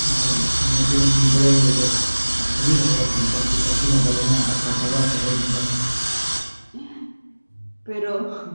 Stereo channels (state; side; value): inverted; both; correlation -1.00